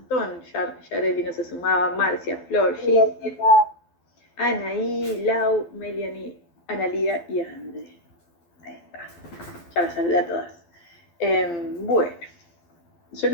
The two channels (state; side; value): late; right; 12 ms